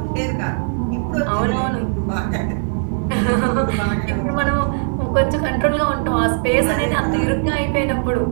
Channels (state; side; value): silent; left; 66 dB below the other